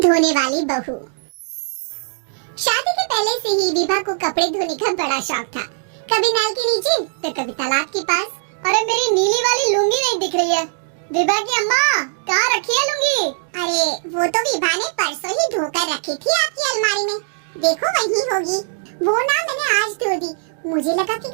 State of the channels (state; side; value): silent; left; 66 dB below the other